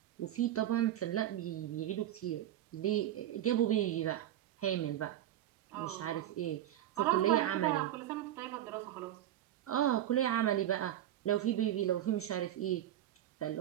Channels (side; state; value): left; quieter; 12.3 dB